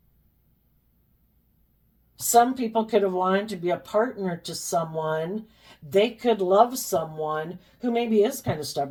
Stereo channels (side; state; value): both; identical; correlation 1.00